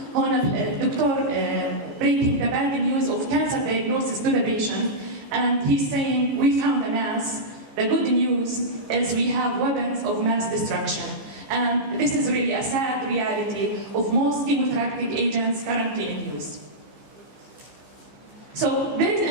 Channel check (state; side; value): late; left; 15 ms